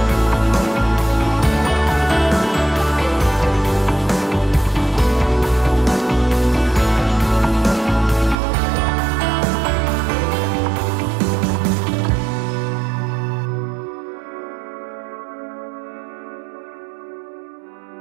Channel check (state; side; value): drops out; left; at 8.3 s